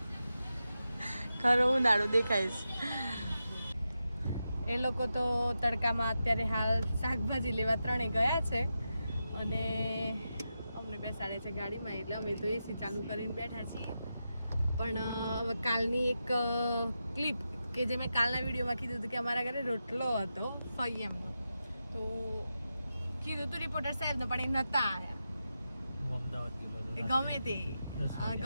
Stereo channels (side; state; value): both; inverted; correlation -0.89